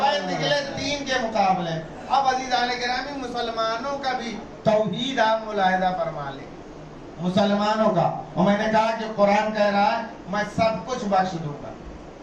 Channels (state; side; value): identical; both; correlation 1.00